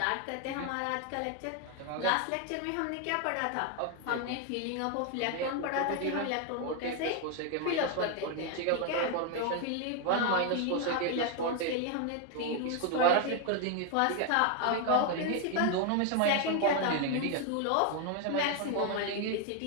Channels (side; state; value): both; different; correlation 0.01